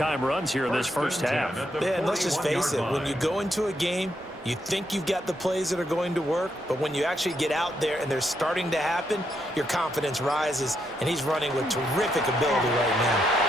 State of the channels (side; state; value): both; normal; correlation 0.79